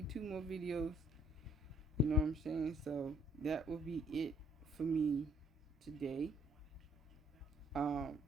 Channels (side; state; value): both; normal; correlation 0.64